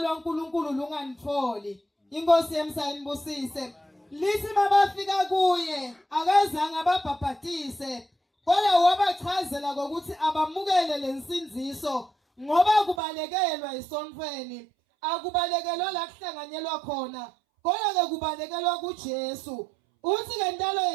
lunganitholi. Inkosi yemsayinibusise. Lithi mabafika kuye akazange ababhaphathise, kodwa wabachazela ukuthi abamukele lensinziso ngoba kubalekelwa esontweni. Akubalekelwa la kuhlanganyelwa khona, kodwa ke kubalekelwa kuJesu. Uthi ke ntalo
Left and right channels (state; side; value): drops out; left; at 13.0 s